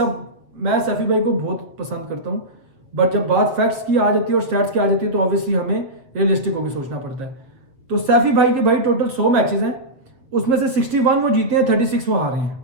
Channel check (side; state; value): left; late; 7.3 ms